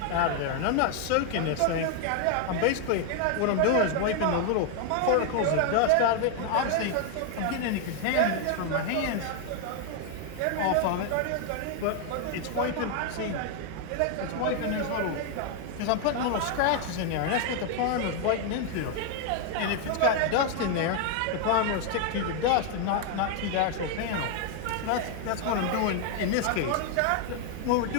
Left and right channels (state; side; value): different; both; correlation 0.00